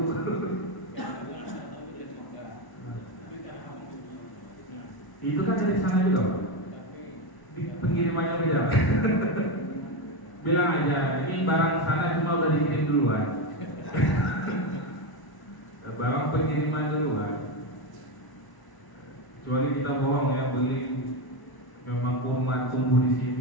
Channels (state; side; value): late; right; 1.0 ms